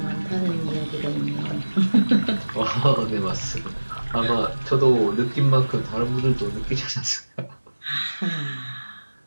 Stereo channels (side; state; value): both; inverted; correlation -1.00